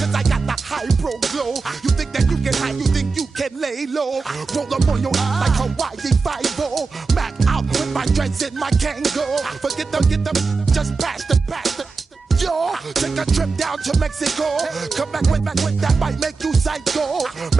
I got the high pro glow. You think that you can hide, you think you can lay low. Roll up on your ass like Hawaii 5-0. Mac out with my dreads in my Kango. Forget them, just pass the. Yo, take a trip down to Mexico. Come back with that might make you psycho.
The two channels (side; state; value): left; quieter; 4.4 dB